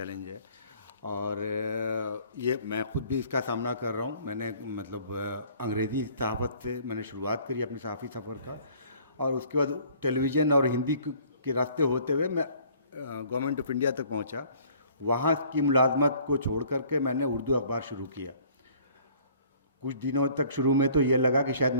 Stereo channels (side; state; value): both; inverted; correlation -0.56